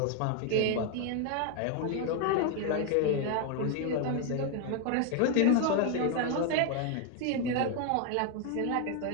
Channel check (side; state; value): both; different; correlation 0.01